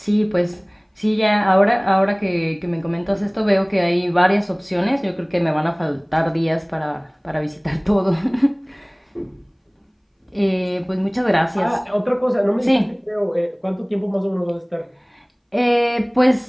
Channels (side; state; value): both; identical; correlation 1.00